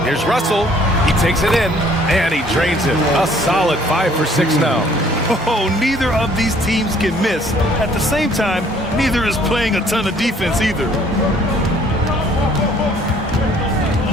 Here's Russell. He takes it in, and he drains it. A solid 5 for 6 now. Oh, neither of these teams can miss. At the same time, neither is playing a ton of defense either.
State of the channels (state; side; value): normal; both; correlation 0.59